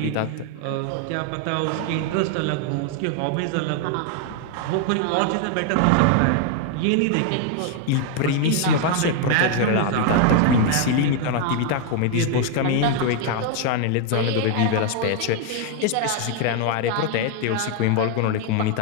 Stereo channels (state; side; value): different; both; correlation 0.00